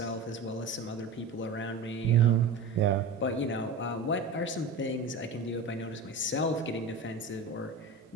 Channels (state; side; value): quieter; left; 3.9 dB